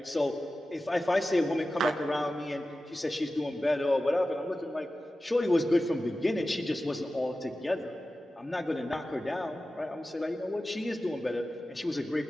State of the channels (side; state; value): both; normal; correlation 0.94